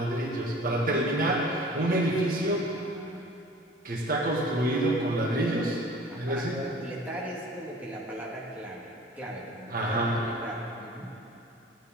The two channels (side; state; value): both; normal; correlation 0.46